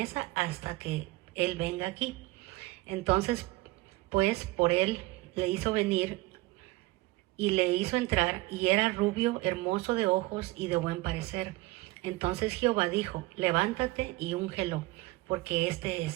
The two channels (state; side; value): quieter; left; 20.5 dB